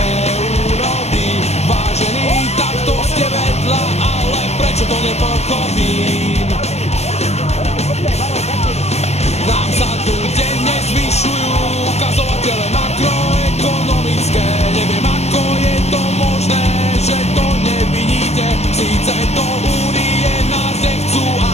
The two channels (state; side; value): late; right; 0.31 ms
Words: Vážení, takto ste vedľa, ale prečo to nepochopím? Nám sa tu denne zvyšujú ukazovatele makroekonomické. Neviem, ako je to možné, že to nevidíte. Síce do únie nás nechcú,